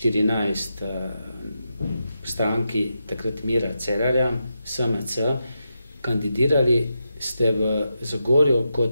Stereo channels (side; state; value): both; inverted; correlation -0.86